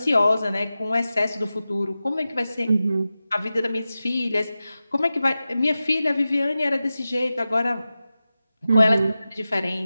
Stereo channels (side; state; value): both; inverted; correlation -0.94